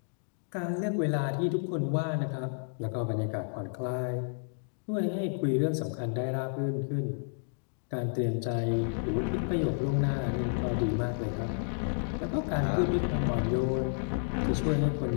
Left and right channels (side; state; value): right; silent; digital silence